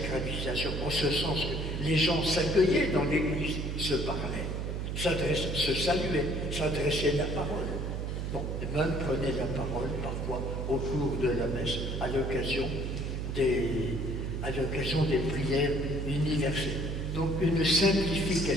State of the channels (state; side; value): noise; right; hum, 3 dB below the sound